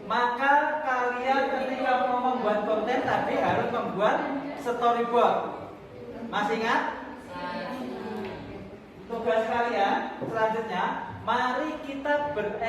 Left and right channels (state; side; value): identical; both; correlation 1.00